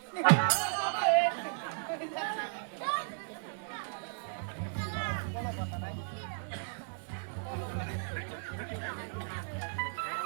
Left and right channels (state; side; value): silent; left; digital silence